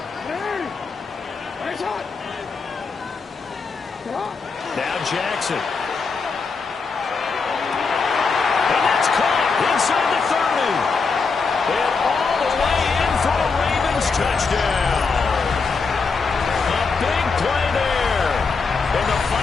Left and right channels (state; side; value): quieter; right; 4.8 dB